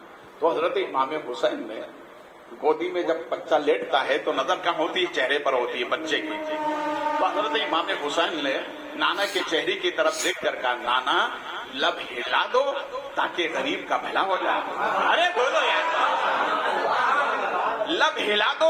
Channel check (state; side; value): identical; both; correlation 1.00